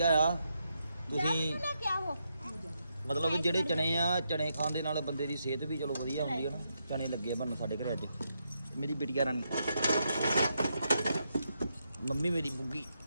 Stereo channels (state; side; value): inverted; both; correlation -0.82